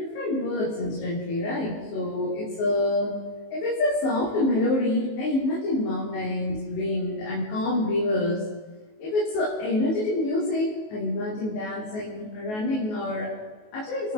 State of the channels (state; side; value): late; right; 19 ms